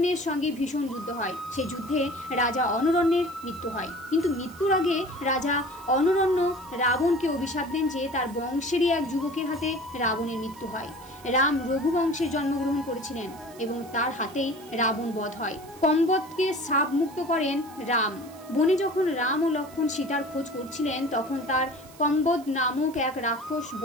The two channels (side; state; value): right; noise; hiss, 22 dB below the sound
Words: সঙ্গে ভীষণ যুদ্ধ হয়। সেই যুদ্ধে রাজা অনরণ্যের মৃত্যু হয়। কিন্তু মৃত্যুর আগে রাজা অনরণ্য রাবণকে অভিশাপ দেন যে তার বংশেরই এক যুবকের হাতে রাবণের মৃত্যু হয়। রাম রঘুবংশে জন্মগ্রহণ করেছিলেন এবং তার হাতেই রাবণ বধ হয়। কম্বদকে শাপ মুক্ত করেন রাম। বনে যখন রাম ও লক্ষ্মণ সীতার খোঁজ করছিলেন তখন তার কম্বদ নামক এক রাক্ষস